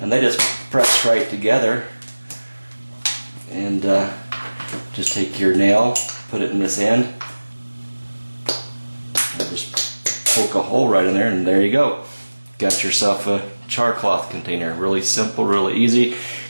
And they just press right together. And just take your nail, put it in this end, and just poke a hole right in there, and there you go. Got yourself a char cloth container. Really simple, really easy. You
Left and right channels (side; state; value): both; inverted; correlation -1.00